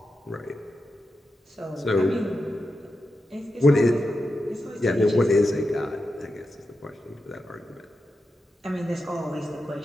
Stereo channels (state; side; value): normal; both; correlation 0.89